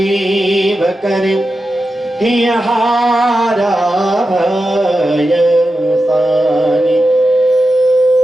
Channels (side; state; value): both; normal; correlation 0.91